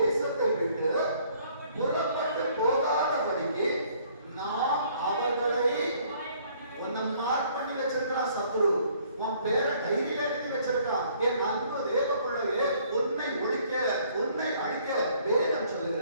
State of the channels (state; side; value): inverted; both; correlation -0.61